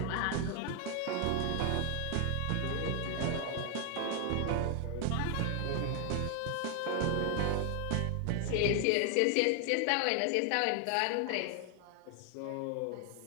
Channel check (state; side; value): different; both; correlation 0.00